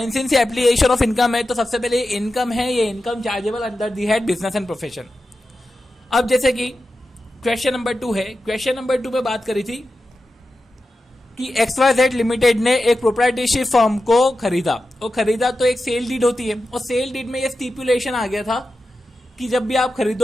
सिंस ये एप्लीकेशन ऑफ इनकम है, तो सबसे पहले इनकम है, ये income chargeable under the head business and profession. अब जैसे कि क्वेश्चन नंबर 2 है, क्वेश्चन नंबर 2 में बात करी थी कि XYZ लिमिटेड ने एक प्रोप्राइटरशिप फर्म को खरीदा, और खरीदा तो एक सेल डीड होती है, और सेल डीड में ये स्टिपुलेशन आ गया था कि जब भी आप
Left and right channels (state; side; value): normal; both; correlation 0.92